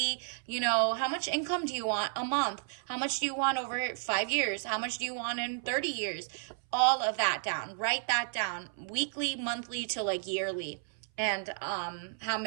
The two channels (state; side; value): silent; left; 56 dB below the other